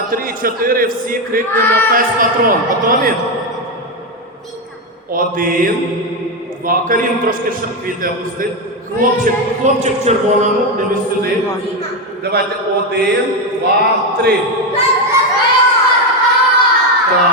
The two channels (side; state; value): both; normal; correlation 0.09